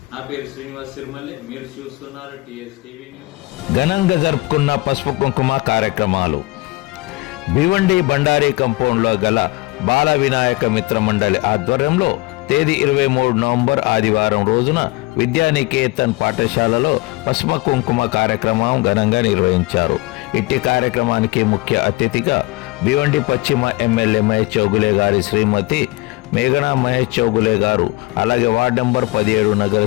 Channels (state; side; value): quieter; right; 22.3 dB